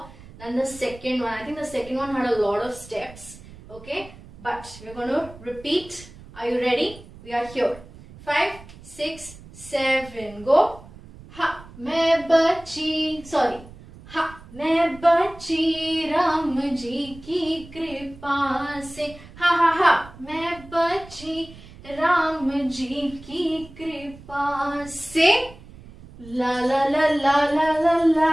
than the second one. I think the second one had a lot of steps. Okay, but we're going to repeat. Are you ready? We are here. 5, 6, 7, go. Ha, मैं बची, sorry. Ha, मैं बची राम जी की कृपा से. Ha ha ha, मैं बची राम जी की कृपा से. La la la la la la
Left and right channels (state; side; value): noise; right; rumble, 19 dB below the sound